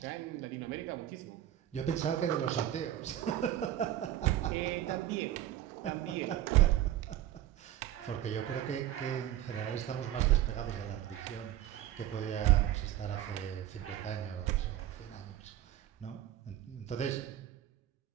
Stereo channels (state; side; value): quieter; left; 12.4 dB